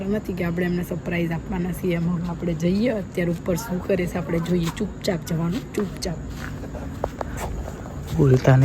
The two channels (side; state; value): both; identical; correlation 1.00